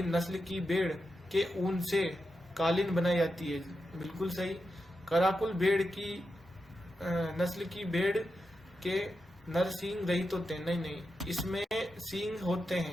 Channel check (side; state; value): both; normal; correlation 0.88